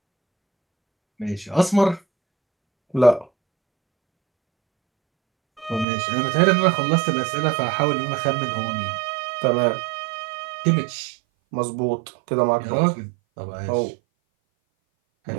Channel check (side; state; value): left; drops out; at 5.9 s